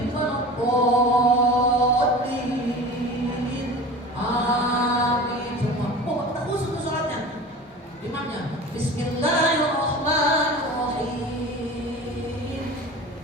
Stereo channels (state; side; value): normal; both; correlation 0.36